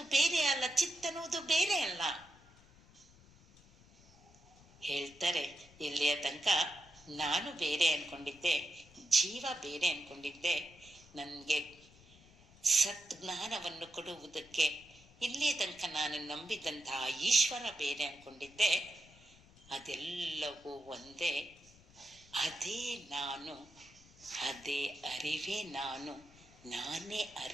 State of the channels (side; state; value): left; noise; rumble, 25 dB below the sound